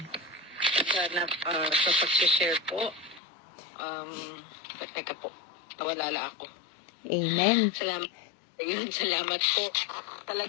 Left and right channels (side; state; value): right; drops out; at 3.2 s